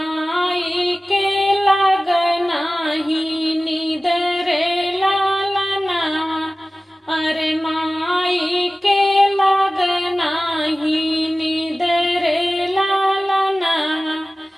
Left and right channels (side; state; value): both; normal; correlation 0.97